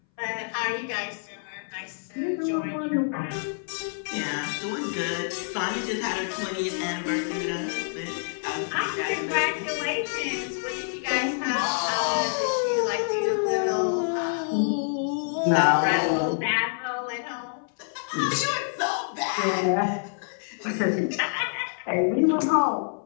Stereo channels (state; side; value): silent; right; 60 dB below the other